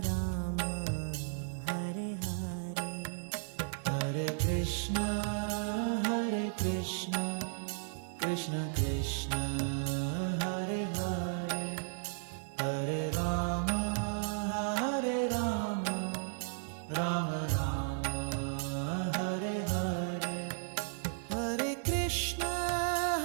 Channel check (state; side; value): silent; left; digital silence